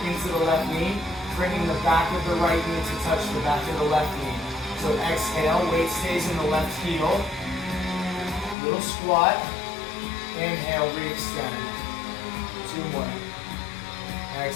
into the left knee, bringing the back of the right knee to touch the back of the left knee. So exhale, weight stays in the left heel. Little squat. Inhale, re-extend. 2 more.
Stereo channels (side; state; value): right; drops out; at 8.6 s